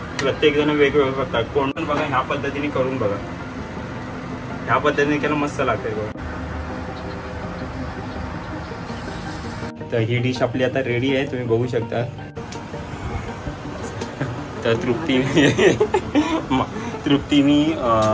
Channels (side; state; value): both; identical; correlation 1.00